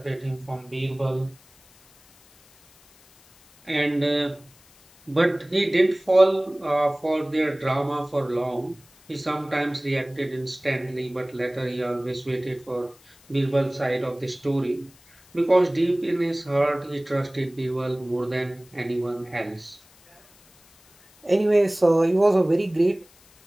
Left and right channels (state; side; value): noise; left; hiss, 28 dB below the sound